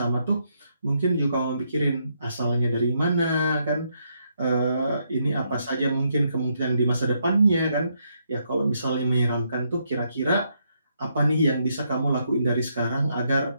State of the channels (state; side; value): inverted; both; correlation -0.77